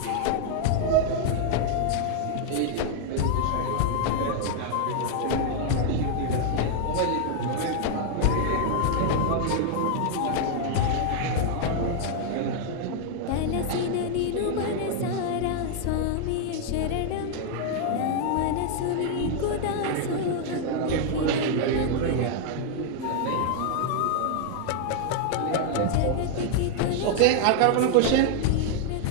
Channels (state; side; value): different; both; correlation 0.00